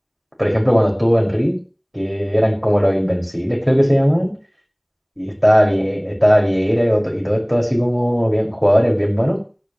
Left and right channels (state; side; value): identical; both; correlation 1.00